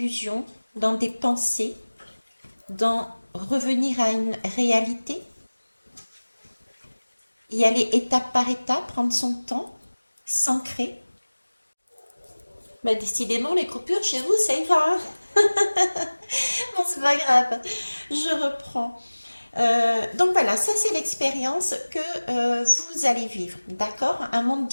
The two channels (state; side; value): inverted; both; correlation -1.00